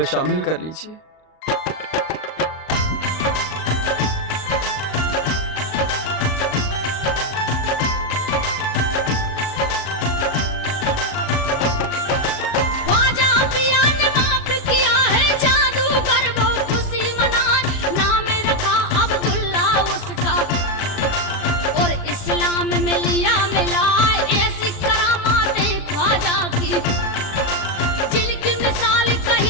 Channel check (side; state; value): right; late; 38 ms